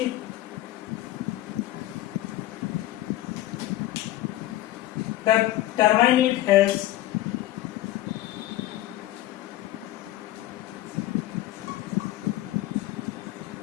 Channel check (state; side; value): quieter; right; 15.3 dB